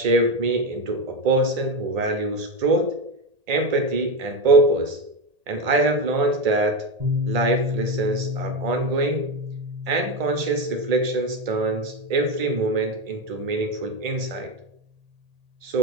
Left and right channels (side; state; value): left; late; 1.8 ms